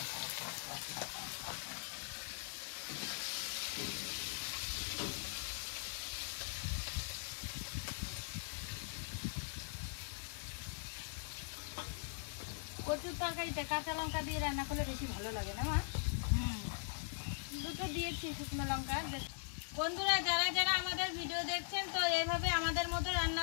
কচুর তরকারিতে কাঁচা লঙ্কা দিয়ে রান্না করলে বেশি ভালো লাগে না মা? দুটো দিয়েছি শুকনো লঙ্কা। বন্ধুরা, যারা যারা আমাদের ভিডিও দেখছেন, তো এইভাবে আমাদের মতো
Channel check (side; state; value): right; silent; digital silence